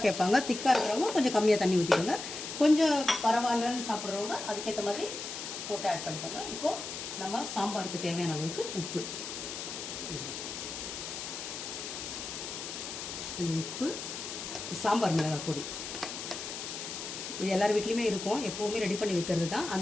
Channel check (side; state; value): left; noise; hiss, 7 dB below the sound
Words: கேட்பாங்க. திக்காக இருக்கிறவங்க கொஞ்சம் கம்மியாக தண்ணி ஊற்றிக்கோங்க. கொஞ்சம் பரவாயில்லன்னு சாப்பிட்றவங்க அதுக்கேற்ற மாதிரி போட்டு ஆட் பண்ணிக்கோங்க. இப்போது நம்ம சாம்பாருக்கு தேவையான அளவுக்கு உப்பு, சாம்பார் மிளகாய் பொடி, இது எல்லார் வீட்லேயுமே இருக்கும், எப்போவுமே ரெடி பண்ணி வைக்கிறது தான்.